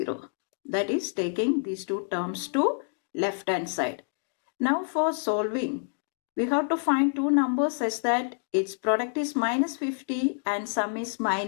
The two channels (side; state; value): right; silent; digital silence